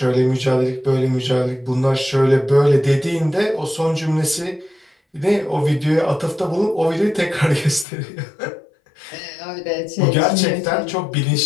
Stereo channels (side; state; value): right; drops out; at 7.9 s